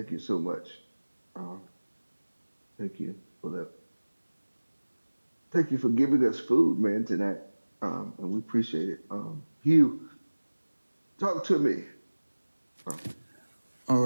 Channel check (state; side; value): inverted; both; correlation -1.00